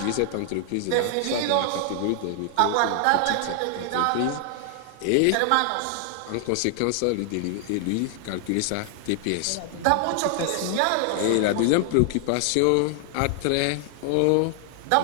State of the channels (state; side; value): different; both; correlation 0.00